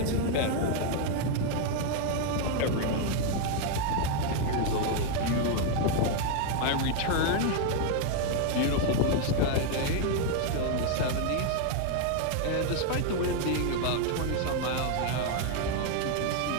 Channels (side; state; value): both; different; correlation 0.00